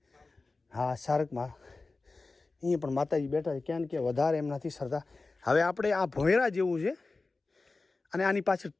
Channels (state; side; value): quieter; right; 3.6 dB